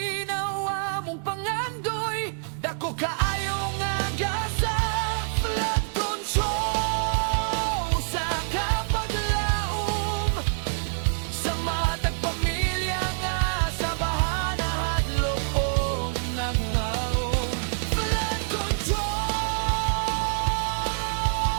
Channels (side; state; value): left; silent; digital silence